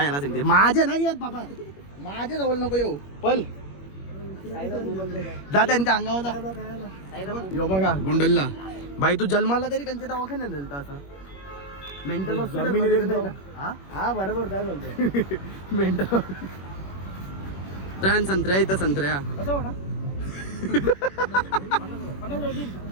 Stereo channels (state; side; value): late; right; 21 ms